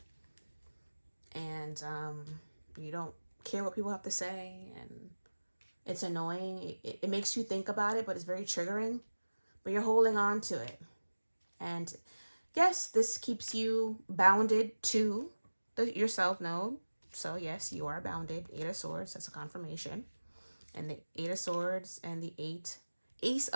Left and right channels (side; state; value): both; inverted; correlation -1.00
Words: And you don't care what people have to say, and it's annoying. It makes you think about it, but it's very triggering. But you're holding on to it. And yes, this keeps you bounded to your self node. So yes, you are bounded. 8 of Swords, that's a confirmation. And the 8 of Swords and the Ace